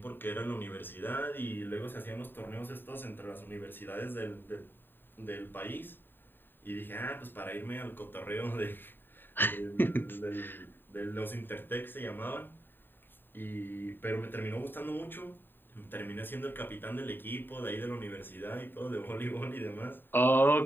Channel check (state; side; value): late; right; 0.095 ms